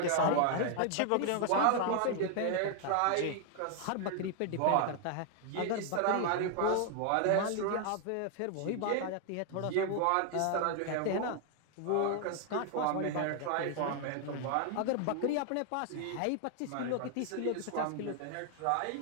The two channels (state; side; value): different; both; correlation 0.00